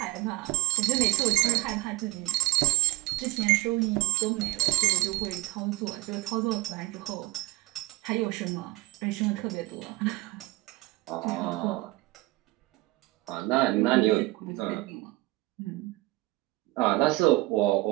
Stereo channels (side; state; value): left; quieter; 20.0 dB